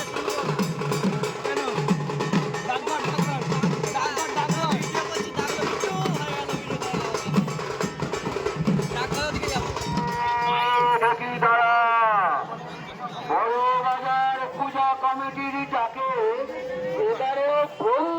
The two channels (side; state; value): both; identical; correlation 1.00